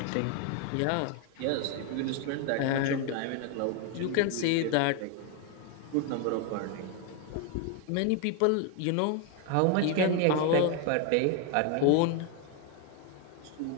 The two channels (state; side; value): different; both; correlation 0.01